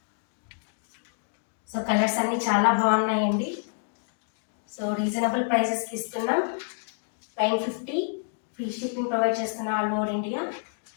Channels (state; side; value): silent; right; digital silence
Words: so colours అన్నీ చాలా బాగున్నాయండి. సో రీజనబుల్ ప్రైసెస్కి ఇస్తున్నాం. 950 ఫ్రీ షిప్పింగ్ ప్రొవైడ్ చేస్తున్నాం ఆల్ ఓవర్ ఇండియా.